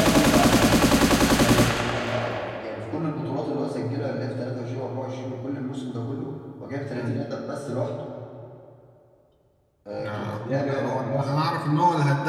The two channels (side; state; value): both; identical; correlation 1.00